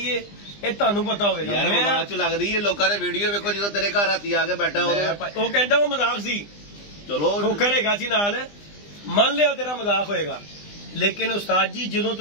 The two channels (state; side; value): late; right; 20 ms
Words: ਇਹ ਤੁਹਾਨੂੰ ਪਤਾ ਹੋਵੇਗਾ। ਯਾਰ ਮਜ਼ਾਕ ਚ ਲੱਗਦੀ ਹੈ, ਲੋਕਾਂ ਨੇ ਵੀਡੀਓ ਵੇਖੋ ਜਦੋਂ ਤੇਰੇ ਘਰ ਰਾਤੀ ਆ ਕੇ ਬੈਠਾ ਉਹ ਕਹਿੰਦਾ ਉਹ ਮਜ਼ਾਕ ਸੀ, ਚਲੋ ਖੋਖਰ ਹੈਗਾ ਸੀ ਨਾਲ, ਮੰਨ ਲਿਆ ਤੇਰਾ ਮਜ਼ਾਕ ਹੋਏਗਾ। ਲੇਕਿਨ ਉਸਤਾਦ ਜੀ ਜਦੋਂ